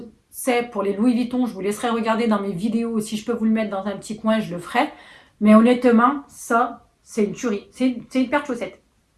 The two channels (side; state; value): both; identical; correlation 1.00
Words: c'est pour les Louis Vuitton, je vous laisserai regarder dans mes vidéos. Si je peux vous le mettre dans un petit coin, je le ferai. Mais honnêtement, ça, c'est une tuerie. C'est une paire de chaussettes.